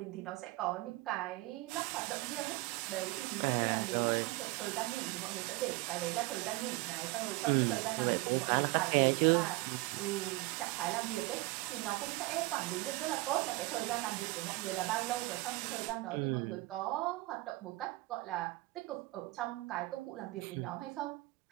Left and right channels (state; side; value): quieter; left; 21.2 dB